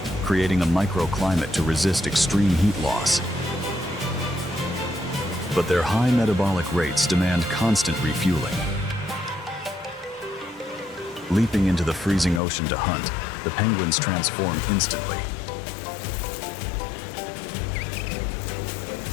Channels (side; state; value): right; drops out; at 12.4 s